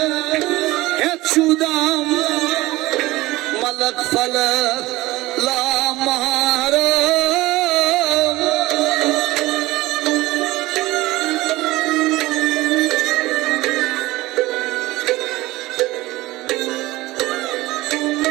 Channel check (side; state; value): left; quieter; 18.8 dB